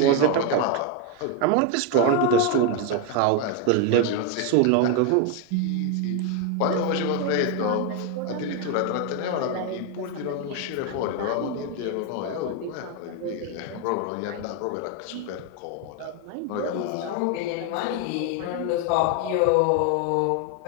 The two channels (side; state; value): both; different; correlation 0.01